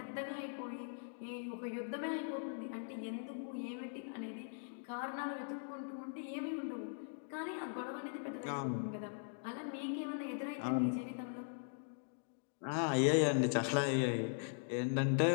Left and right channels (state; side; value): silent; right; digital silence